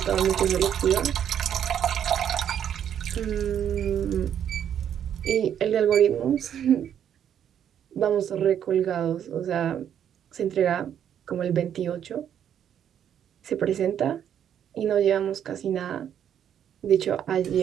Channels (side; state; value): left; quieter; 9.4 dB